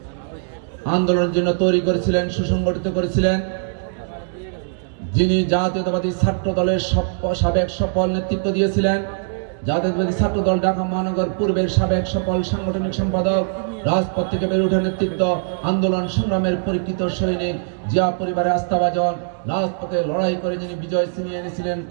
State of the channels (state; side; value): silent; left; digital silence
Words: আন্দোলনের জন্য তৈরি করেছিলেন, সুসংগঠিত করেছিলেন, যিনি জাতীয়তাবাদী ছাত্র দলের সাবেক সফল নেতৃত্ব দিয়েছিলেন, জাতীয়তাবাদী ছাত্র দল ঢাকা মহানগর পূর্বের সাবেক সফল সাংগঠনিক সম্পাদক, রাজপথ থেকে বেড়ে ওঠা নেতৃত্ব, আন্দোলন সংগ্রামের পরীক্ষিত সৈনিক, জিয়া পরিবারের আস্থাভাজন, রাজপথে লড়াই করে যিনি বিজয় ছিনিয়ে এনেছিলেন,